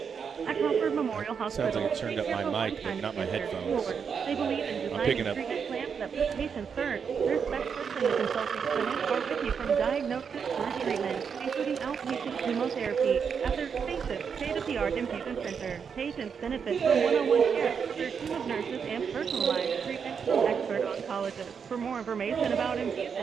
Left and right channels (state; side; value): quieter; left; 6.6 dB